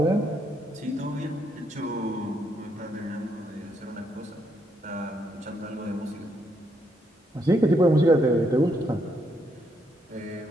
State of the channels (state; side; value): normal; both; correlation 0.75